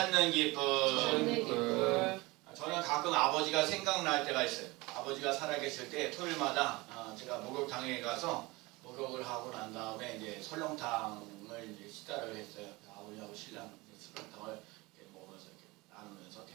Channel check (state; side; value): quieter; left; 22.8 dB